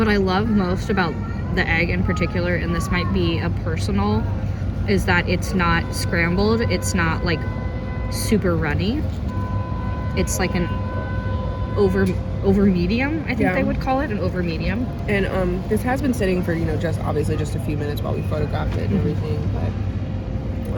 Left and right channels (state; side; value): identical; both; correlation 1.00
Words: I love most about the egg in particular, and this might be a personal, is that it's not scrambled. It's not like super runny. It's like an over medium, I think they would call it, an over medium. And this has been sitting for, just obviously just a few minutes while we photographed it and everything. But